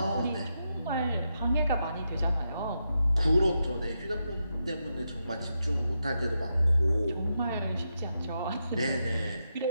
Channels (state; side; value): inverted; both; correlation -0.85